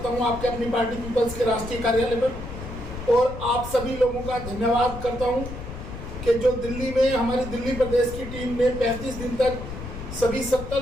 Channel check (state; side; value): noise; left; rumble, 9 dB below the sound